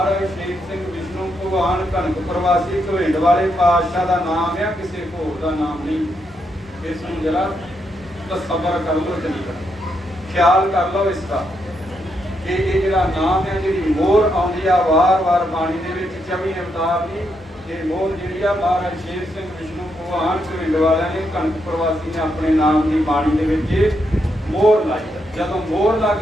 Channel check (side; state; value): both; normal; correlation 0.80